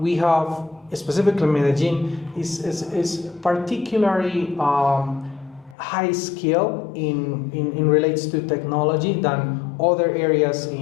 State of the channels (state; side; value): drops out; right; at 5.8 s